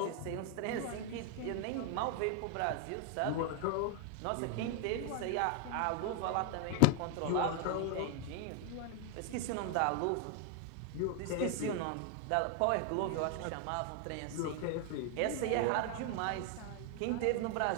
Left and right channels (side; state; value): both; different; correlation 0.00